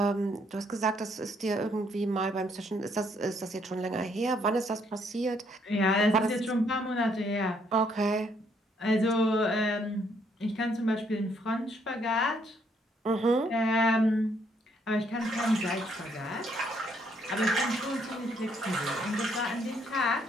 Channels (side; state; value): both; normal; correlation 0.70